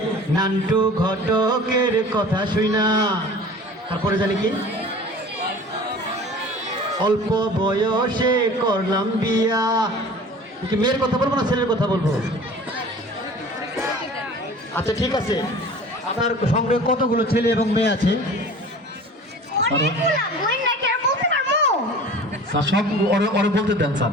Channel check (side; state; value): both; normal; correlation 0.42